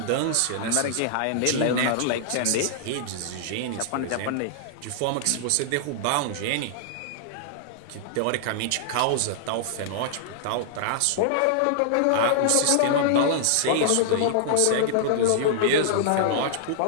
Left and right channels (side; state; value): both; different; correlation -0.01